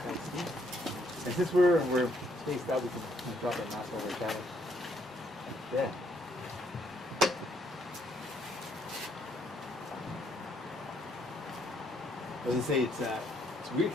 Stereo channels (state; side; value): normal; both; correlation 0.71